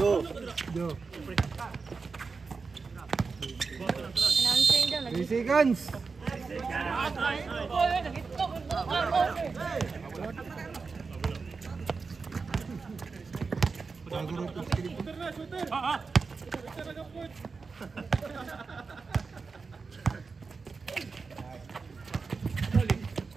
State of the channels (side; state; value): left; quieter; 4.6 dB